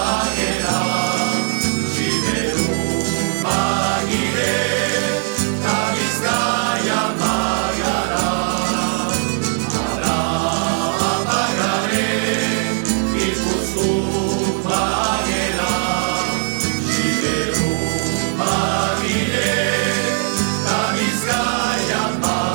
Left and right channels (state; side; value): silent; left; 57 dB below the other